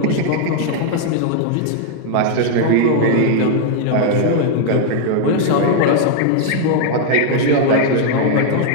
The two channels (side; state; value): both; different; correlation 0.00